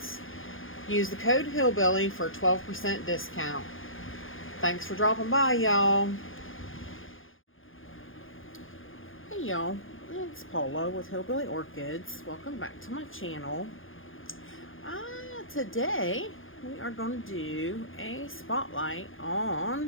Use the code Hillbilly for a 12% discount. Thanks for dropping by, y'all. Hey y'all, it's Paula with Hillbilly Orchids. Welcome back to my channel. Today we are going to do a spotlight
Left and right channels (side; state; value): right; late; 0.59 ms